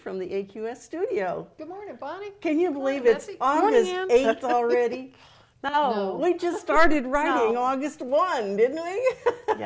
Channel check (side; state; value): both; identical; correlation 1.00